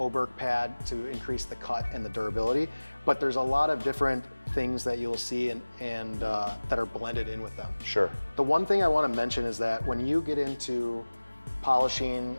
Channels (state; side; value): inverted; both; correlation -1.00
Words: pad to increase the cut and the durability, but there's a lot of different things that you'll see and that are blended in with them. Sure. The one thing I want to mention is that when you get into